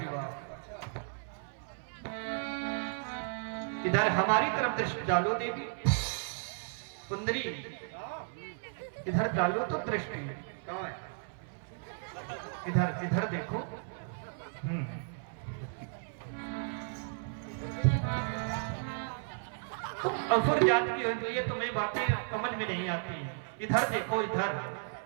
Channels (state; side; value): silent; left; 55 dB below the other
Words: इधर हमारी तरफ दृष्टि डालो देवी सुंदरी, इधर डालो तो दृष्टि। इधर इधर देखो। तुम असुर जात की हो, ये तुम्हें बातें समझ में नहीं आती। इधर देखो, इधर